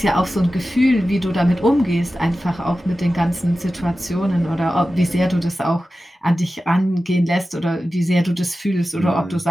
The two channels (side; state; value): both; normal; correlation 0.94